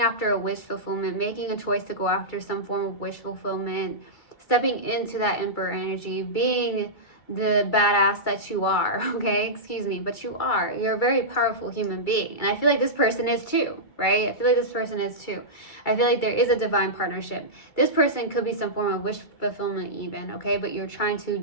a wish fulfillment, making a choice to go after some form of wish fulfillment, stepping into that Emperor energy, being the badass that you are, okay? Excuse me, but you are. You're a very powerful human being. And I feel like this person is too, right? I feel like this person is too. I feel like there is a divine partnership. This person could be some form of wish fulfillment even, okay? But you're trying to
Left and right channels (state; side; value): late; right; 2.3 ms